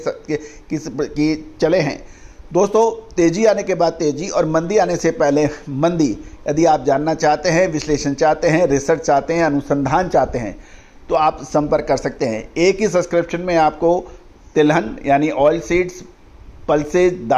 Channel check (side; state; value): both; identical; correlation 1.00